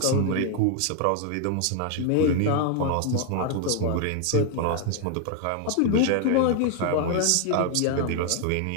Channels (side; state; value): both; different; correlation 0.00